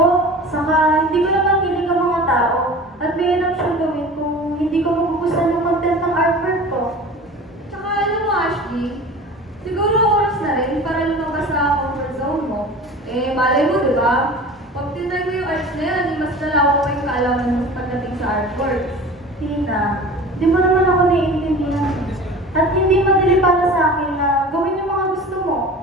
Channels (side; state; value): both; normal; correlation 0.38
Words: saka hindi ko naman hiling ang mga tao. At may alam siyang gawin kung hindi ko magugustuhan yung content ng artwork ko. Tsaka alam mo, Ashley, siguro oras na rin para lumabas sa comfort zone mo. Malay mo, di ba? Pag tinry mo yung arts na yan, mas nalawa pa yung kaalaman mo pagdating sa artwork. Tina, di mo naman ako naiintindihan. At hindi madali para sa akin na gawin yung mga gusto mo.